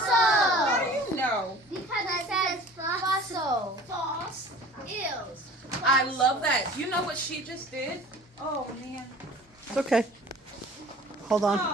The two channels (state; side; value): normal; both; correlation 0.45